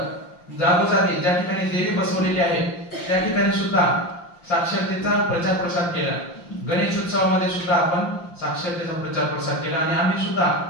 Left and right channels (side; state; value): right; late; 5.8 ms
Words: जागोजागी ज्या ठिकाणी देवी बसवलेली आहे त्या ठिकाणी सुद्धा साक्षरतेचा प्रचार प्रसार केला। गणेश उत्सवामध्ये सुद्धा आपण साक्षरतेचा प्रचार प्रसार केला आणि आम्ही सुद्धा